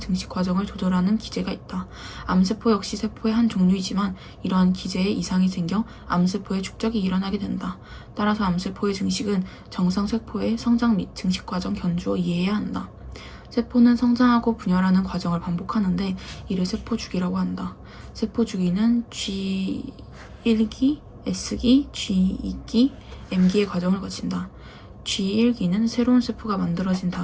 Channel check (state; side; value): identical; both; correlation 1.00